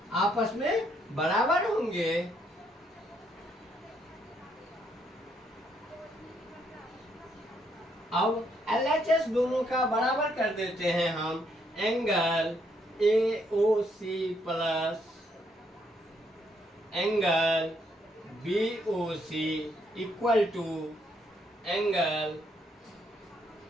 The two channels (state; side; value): normal; both; correlation 0.73